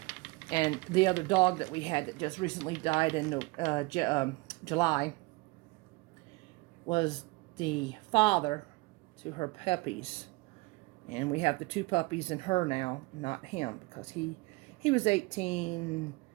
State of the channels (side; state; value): left; quieter; 23.5 dB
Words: And the other dog that we had that just recently died in July was the father to her puppies. And we have the 2 puppies and her now, not him, because he was 18.